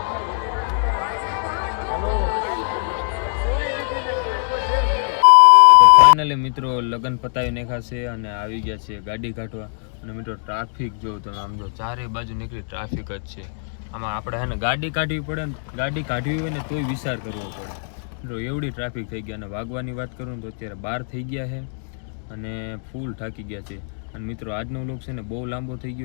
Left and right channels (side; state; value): right; silent; digital silence